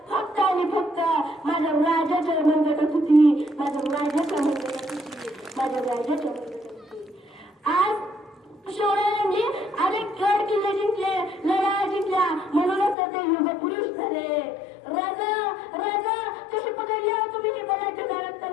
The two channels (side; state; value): right; drops out; at 13.0 s